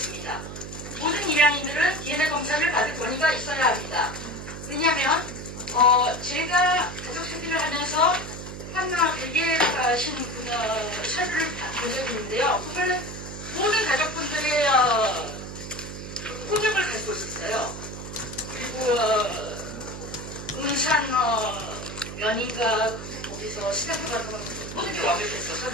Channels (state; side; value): noise; right; hum, 9 dB below the sound